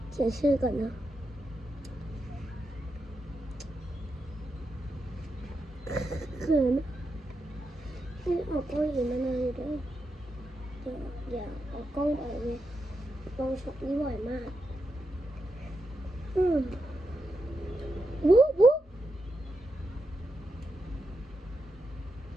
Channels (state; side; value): normal; both; correlation 0.86